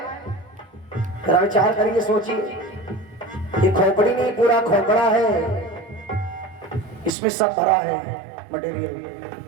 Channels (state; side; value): drops out; left; at 7.1 s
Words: जरा विचार करिए, सोचिए। ये खोपड़ी नहीं, पूरा खोपड़ा है, इसमें सब भरा है मटेरियल।